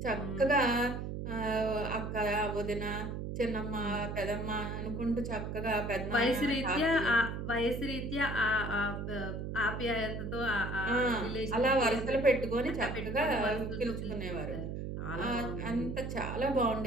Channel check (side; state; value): right; noise; hum, 5 dB below the sound